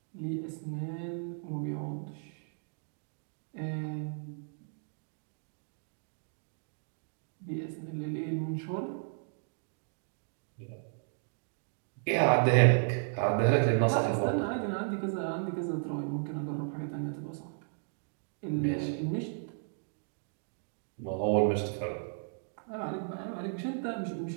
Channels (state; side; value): silent; left; digital silence